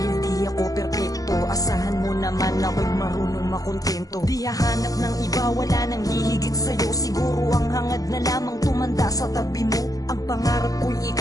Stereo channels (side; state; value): right; late; 0.17 ms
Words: di ako perpekto. Asahan mo naman ako'y marunong makontento. Di hahanap ng iba, wala nang hihigit sa'yo. Siguro ang hangad na lamang tumanda sa tabi mo. Ang pangarap ko'y